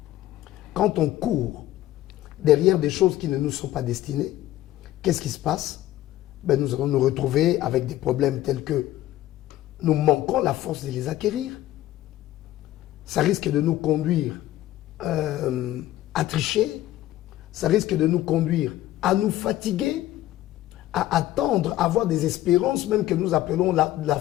Quand on court derrière des choses qui ne nous sont pas destinées, qu'est-ce qui se passe? Ben, nous allons nous retrouver avec des problèmes tels que nous manquons la force de les acquérir. Ça risque de nous conduire à tricher, ça risque de nous conduire à nous fatiguer, à attendre, à avoir des espérances, même que nous appelons la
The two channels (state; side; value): quieter; right; 14.6 dB